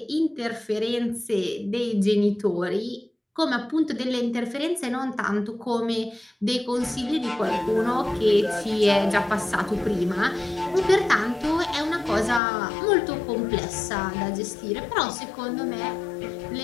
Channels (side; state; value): right; drops out; at 12.4 s